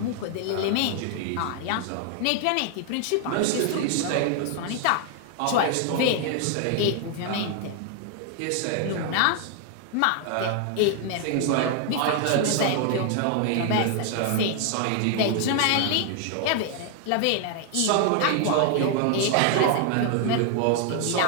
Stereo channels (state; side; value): different; both; correlation 0.00